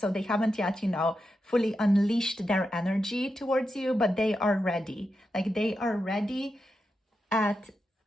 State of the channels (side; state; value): both; normal; correlation 0.88